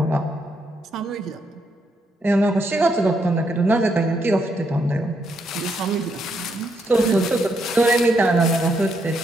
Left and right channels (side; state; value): both; normal; correlation 0.77